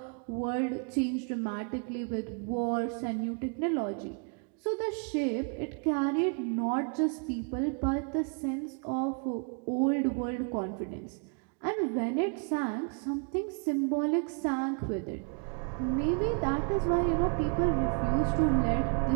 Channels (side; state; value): left; quieter; 39.3 dB